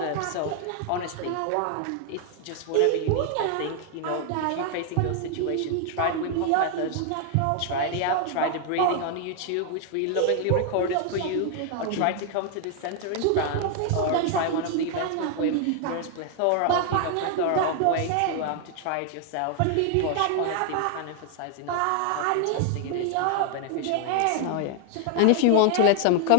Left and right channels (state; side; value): different; both; correlation 0.00